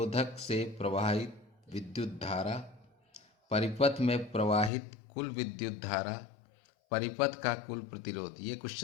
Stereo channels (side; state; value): right; drops out; at 4.7 s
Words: से प्रवाहित विद्युत धारा, परिपथ में प्रवाहित कुल विद्युत धारा, परिपथ का कुल प्रतिरोध। ये